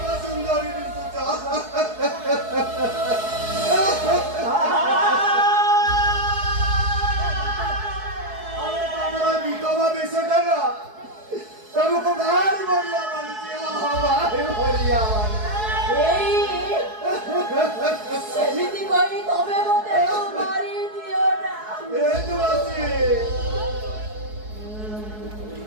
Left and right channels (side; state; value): left; late; 4.7 ms